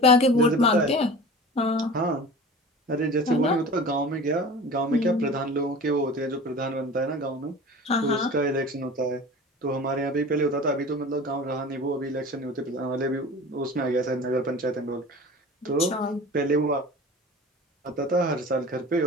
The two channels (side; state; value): both; normal; correlation 0.38